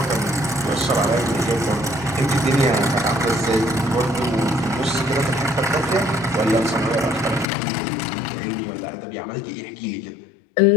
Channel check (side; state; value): right; drops out; at 7.5 s